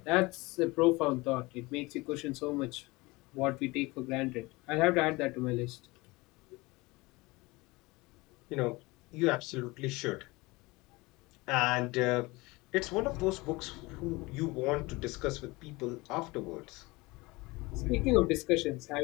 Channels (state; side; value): quieter; right; 22.9 dB